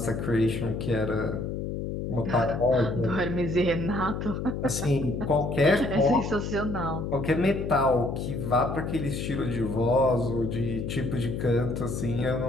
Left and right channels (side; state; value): left; noise; hum, 4 dB below the sound